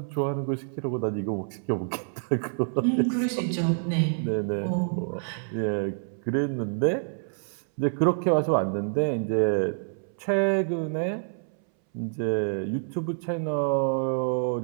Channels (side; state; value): left; silent; 60 dB below the other